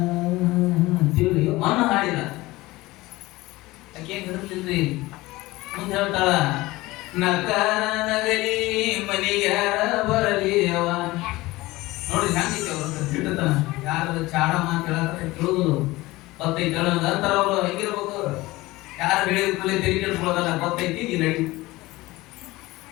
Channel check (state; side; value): quieter; right; 19.7 dB